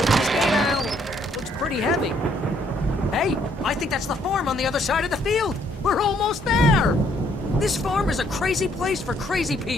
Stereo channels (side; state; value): both; normal; correlation 0.68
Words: this gate, Al. Looks pretty heavy. Hey, I think that's the farm on the other side of the field. We're almost there. This farm is a crazy place for crazy